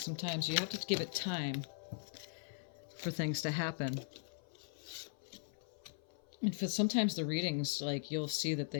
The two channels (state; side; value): silent; right; 51 dB below the other